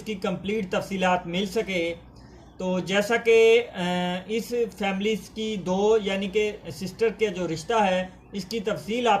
कंप्लीट तफसीलात मिल सके। तो जैसा कि इस फैमिली की दो यानी कि सिस्टर के जो रिश्ता है इसकी तफसील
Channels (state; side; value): identical; both; correlation 1.00